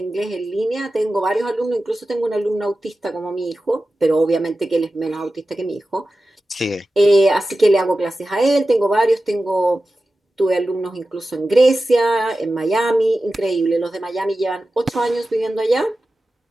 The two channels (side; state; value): both; normal; correlation 0.94